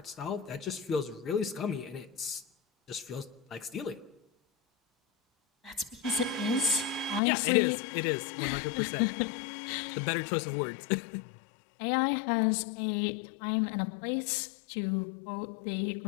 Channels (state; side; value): drops out; right; at 7.2 s